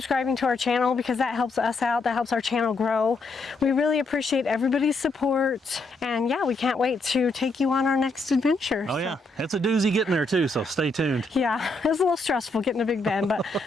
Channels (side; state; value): right; quieter; 3.0 dB